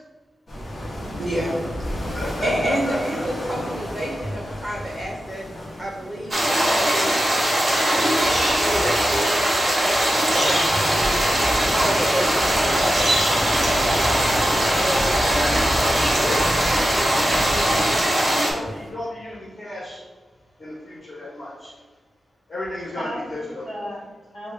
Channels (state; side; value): normal; both; correlation 0.91